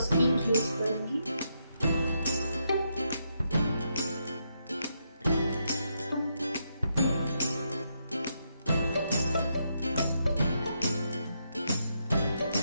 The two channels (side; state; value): both; inverted; correlation -0.80